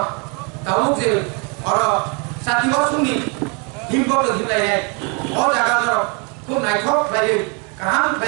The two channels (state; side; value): quieter; left; 33.9 dB